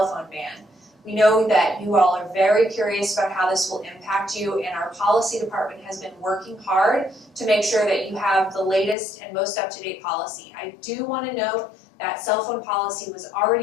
phone ban. We know that you all are very curious about how this will impact you, and our policy department has been working hard to make sure that you have the latest and most up-to-date policy. I do want to note that cell phone policy was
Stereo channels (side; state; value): right; drops out; at 9.0 s